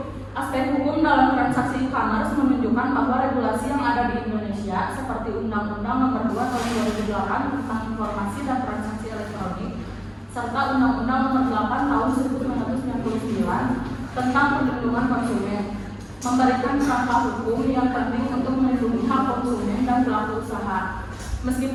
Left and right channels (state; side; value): identical; both; correlation 1.00